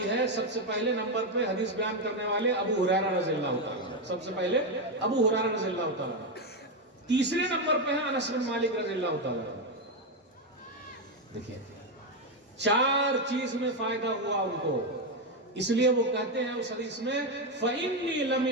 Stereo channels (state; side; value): normal; both; correlation 0.07